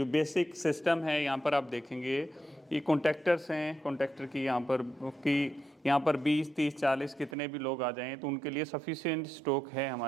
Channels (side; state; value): left; drops out; at 7.4 s